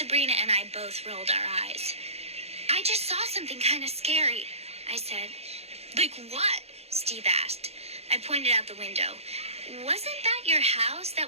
and I both rolled our eyes. "I just saw something kind of scary," I said. "Like what?" Steve asked. I pointed out the window. "Wasn't that your house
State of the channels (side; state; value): left; late; 0.30 ms